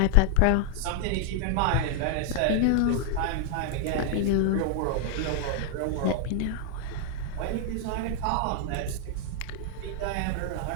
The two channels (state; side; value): different; both; correlation 0.00